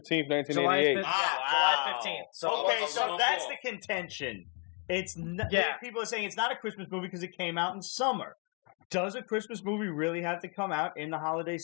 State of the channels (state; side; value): quieter; right; 36.7 dB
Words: 1988. July 15th. So Okay, so that's the contention. It's Yeah. people are saying it's not a Christmas movie because it came out in summer. Does a Christmas movie really have to come out in the holiday